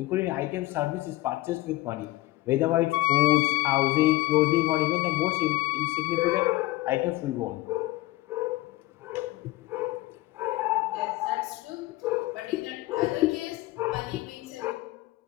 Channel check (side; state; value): right; quieter; 18.9 dB